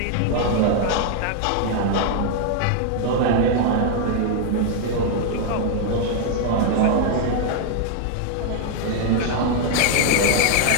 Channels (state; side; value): different; both; correlation 0.00